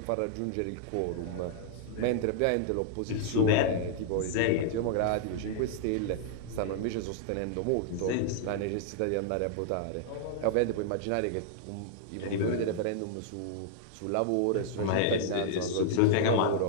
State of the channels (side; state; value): both; different; correlation -0.01